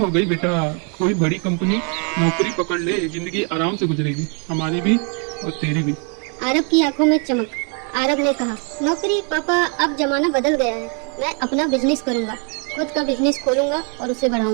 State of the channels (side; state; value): left; quieter; 37.9 dB